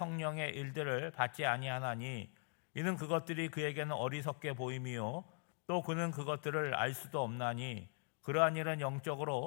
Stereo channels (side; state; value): right; silent; 50 dB below the other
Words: 일들을 받지 아니하나니 이는 그것들이 그에게는 어리석게 보임이요 또 그는 그것들을 알 수도 없나니 그러한 일은